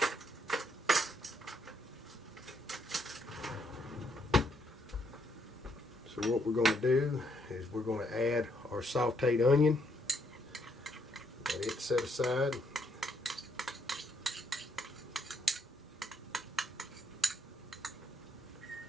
So what we're going to do is we're going to add our sauteed onion. Let it set aside.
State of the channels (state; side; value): normal; both; correlation 0.74